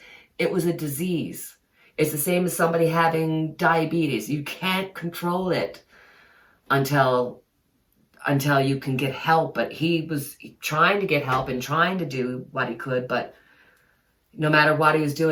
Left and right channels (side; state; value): both; identical; correlation 1.00